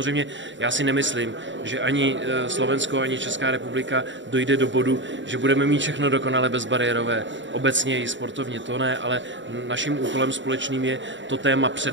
já si nemyslím, že ani Slovensko, ani Česká republika dojde do bodu, že budeme mít všechno dokonale bezbariérové. Obecně i sportovně to ne, ale naším úkolem společným je to téma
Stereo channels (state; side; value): late; left; 0.54 ms